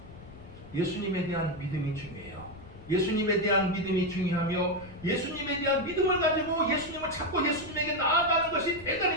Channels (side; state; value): left; noise; rumble, 17 dB below the sound